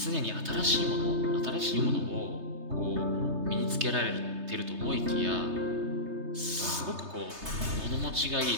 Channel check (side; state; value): left; late; 3.3 ms